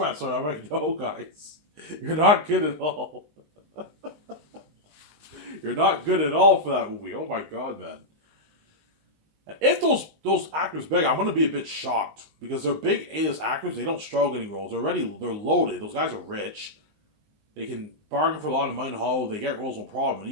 story. I'm like, no, guys. You're not good at all. You're not good at all for that movie. Oh my God, man. If those actors beg, I'm going to be a bit shocked. Because they're big A-list actors. They don't struggle getting roles. They're loaded. Those guys are rich. They can bargain for a lot of money in Hollywood. They get roles, no problem. And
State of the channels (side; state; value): left; late; 19 ms